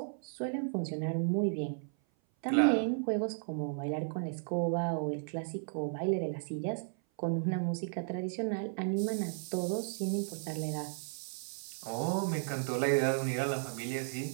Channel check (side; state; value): left; silent; 55 dB below the other